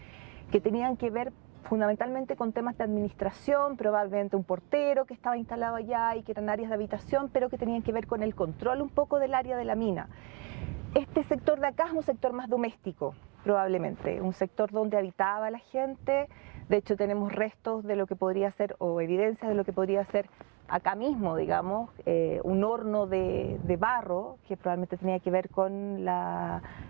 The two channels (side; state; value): left; quieter; 28.8 dB